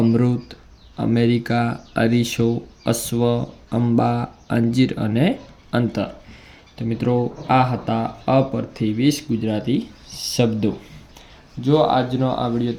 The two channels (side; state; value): both; identical; correlation 1.00